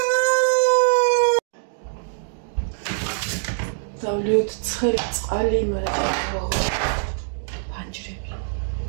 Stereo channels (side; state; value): left; silent; digital silence